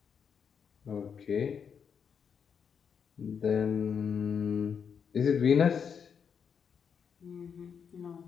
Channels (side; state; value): right; quieter; 6.9 dB